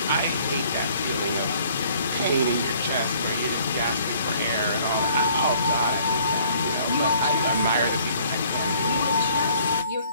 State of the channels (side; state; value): both; inverted; correlation -0.58